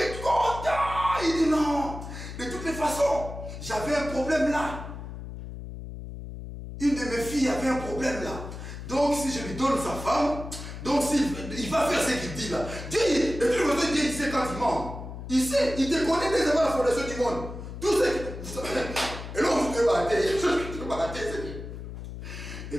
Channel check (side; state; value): left; noise; hum, 10 dB below the sound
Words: est content. Il dit non. De toutes les façons, j'avais un problème là. Une de mes filles avait un problème là. Donc si je lui donne sa femme, donc il va faire ce qu'il dit là. Dieu, Dieu il sait quand il ment. Il sait, il te connaît dès avant la fondation du monde. Tout ce que... Et là on se débattait. Il y a des choses que tu vas il y a